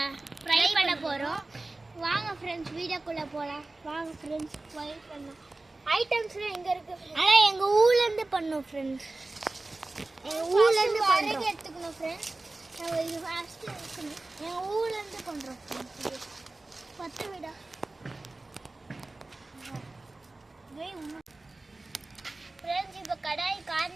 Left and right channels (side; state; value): left; quieter; 3.0 dB